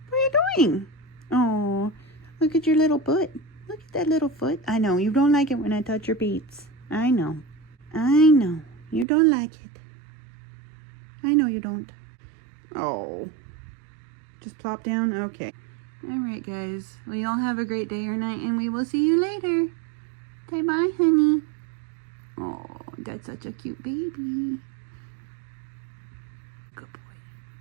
What are you doing? Oh, look at your little foot. Look at that little foot. I know, you don't like it when I touch your beats. I know. I know. You don't like it. I know you don't. Oh. Just plop down? Okay. Alright, guys. Well, y'all have a great day or night, and we will see you later. Bye-bye, honey. Oh, that's such a cute baby. Good boy.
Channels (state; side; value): drops out; left; at 9.1 s